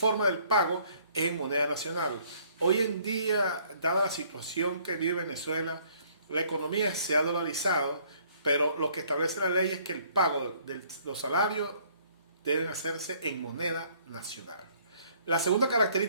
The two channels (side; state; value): both; inverted; correlation -0.61